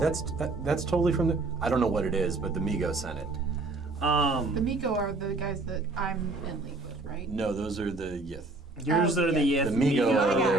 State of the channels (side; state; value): left; quieter; 3.3 dB